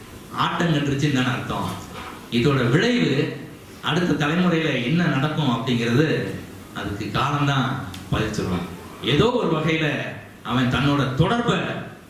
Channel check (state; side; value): identical; both; correlation 1.00